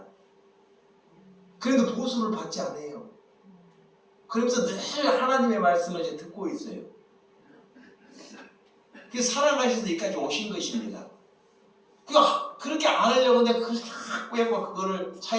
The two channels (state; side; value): identical; both; correlation 1.00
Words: 그래도 보수를 받지 않아요. 그러면서 늘 하나님의 말씀을 이제 듣고 있어요. 그래서 사랑하셔서 여기까지 오신 것입니다. 그렇게 안 하려고 했는데 그걸 자꾸 해고 그거를